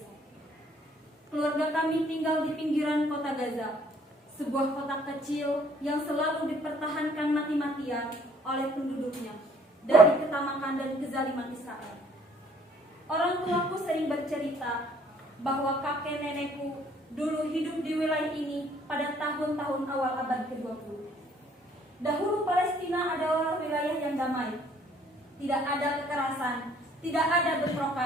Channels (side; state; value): both; normal; correlation 0.61